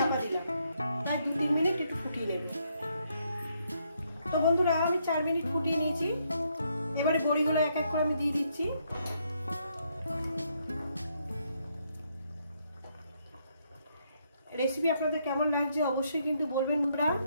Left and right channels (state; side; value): inverted; both; correlation -0.74